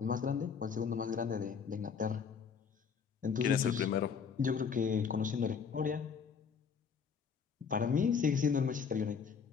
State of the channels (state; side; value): quieter; right; 6.4 dB